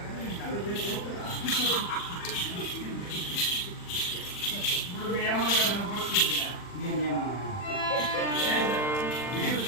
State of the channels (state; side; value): late; right; 40 ms